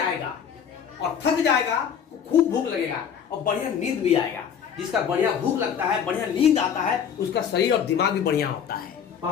और थक जाएगा तो खूब भूख लगेगा, और बढ़िया नींद भी आएगा। जिसका बढ़िया भूख लगता है, बढ़िया नींद आता है, उसका शरीर और दिमाग भी बढ़िया होता है।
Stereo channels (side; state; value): right; quieter; 7.9 dB